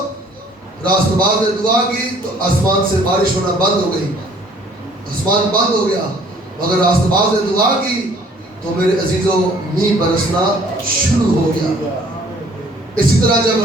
راست باز نے دعا کی تو آسمان سے بارش ہونا بند ہو گئی، آسمان بند ہو گیا، مگر راست باز نے دعا کی تو میرے عزیزو مینہ برسنا شروع ہو گیا۔ اسی طرح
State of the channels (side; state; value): both; normal; correlation 0.57